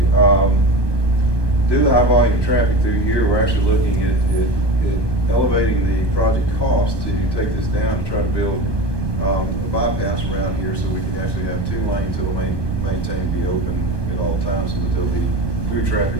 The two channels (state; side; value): late; right; 1.2 ms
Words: due to the high volume of traffic through here, we're actually looking at elevating the project cost to take this down to try to build a bypass around here so we can actually have 2 lanes that will maintain to be open at all times so that there'll be through